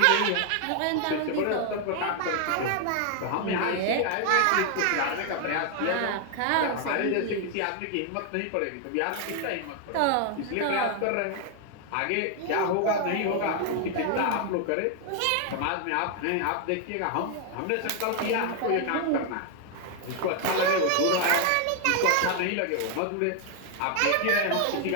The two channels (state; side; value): different; both; correlation 0.00